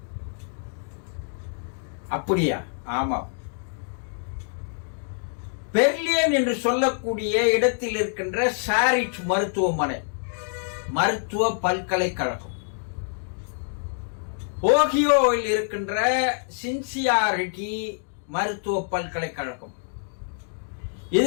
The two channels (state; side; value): silent; right; digital silence